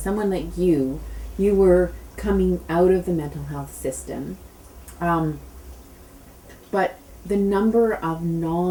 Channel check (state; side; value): identical; both; correlation 1.00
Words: someone like you were coming out of the mental health system, but the number of